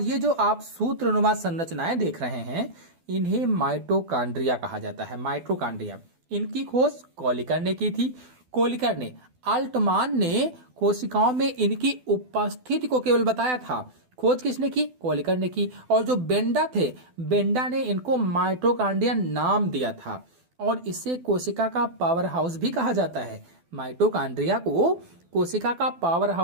जो आप सूत्रनुमा संरचनाएं देख रहे हैं इन्हें माइटोकांड्रिया कहा जाता है। माइटोकांड्रिया। इनकी खोज कोलिकर ने की थी। कोलिकर ने। अल्टमान ने कोशिकाओं में इनकी उपस्थिति को केवल बताया था। खोज किसने की? कोलिकर ने की। और जो बेंडा थे, बेंडा ने इनको माइटोकांड्रिया नाम दिया था। और इसे कोशिका का पावर हाउस भी कहा जाता है। माइटोकांड्रिया को कोशिका का पावर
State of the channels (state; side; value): late; left; 12 ms